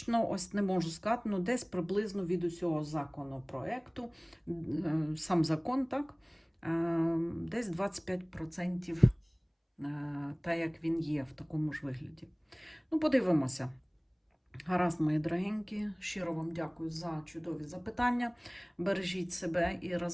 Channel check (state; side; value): identical; both; correlation 1.00